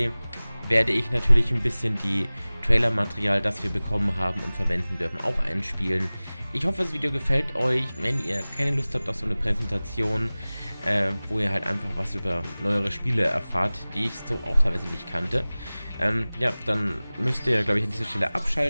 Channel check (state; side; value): inverted; both; correlation -0.99